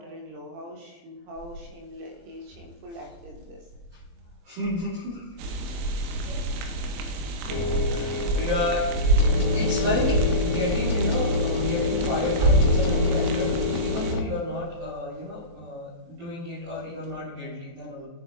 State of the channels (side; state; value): left; late; 24 ms